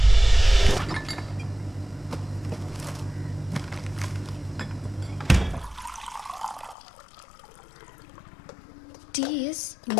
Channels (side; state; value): right; drops out; at 6.8 s